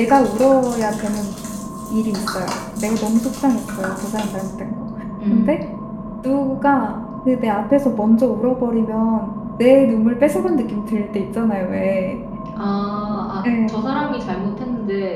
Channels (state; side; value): identical; both; correlation 1.00